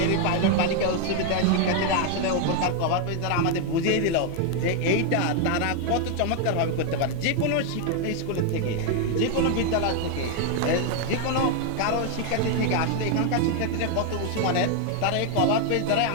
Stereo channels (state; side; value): different; both; correlation 0.01